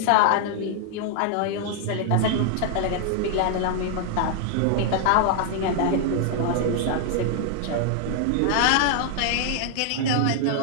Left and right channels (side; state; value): both; different; correlation 0.00